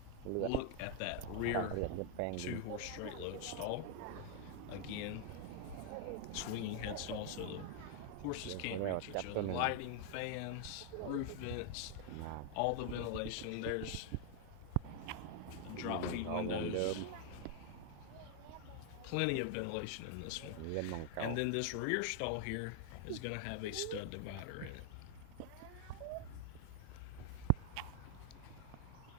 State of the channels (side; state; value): both; different; correlation 0.00